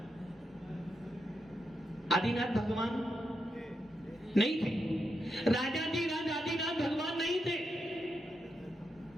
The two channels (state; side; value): normal; both; correlation 0.84